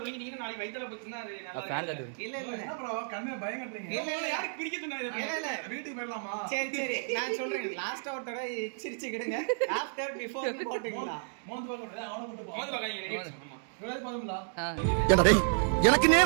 நாளைக்கு வயித்துல போச்சுன்னா அது இல்ல இல்ல ப்ரோ கண்ணே பயம் கட்டுறீங்க. இல்ல யாருக்கு பிடிக்க சொன்னாரு? இல்ல இல்ல வீட்டுக்கு போயிடலாமா? சரி சரி நான் சொல்றேன். லாஸ்ட் அவுட்டோட சிரிச்சுக்கிடுங்க. ஆஃப்டர் பிஃபோர் போட்டுங்களா? மோந்து பாக்க அவன போட்டு போ. மோந்து பாக்க ரெடி ஆமா. இவ்வளவு போதும்டா. ஏண்டா டேய் எனக்கு நேரா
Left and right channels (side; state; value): left; silent; digital silence